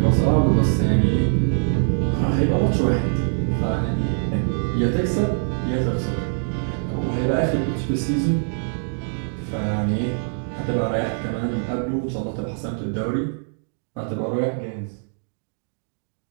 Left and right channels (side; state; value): left; silent; digital silence